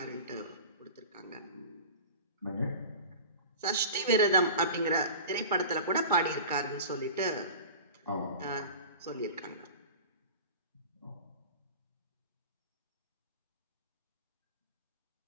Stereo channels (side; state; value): both; inverted; correlation -0.36